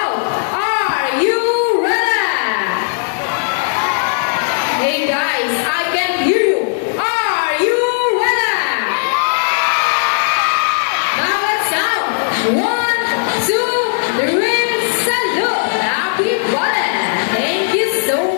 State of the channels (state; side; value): silent; right; digital silence